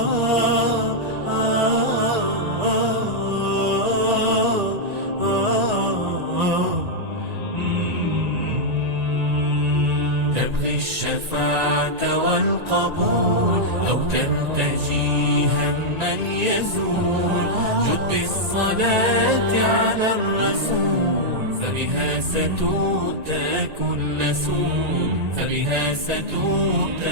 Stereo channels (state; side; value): late; left; 1.9 ms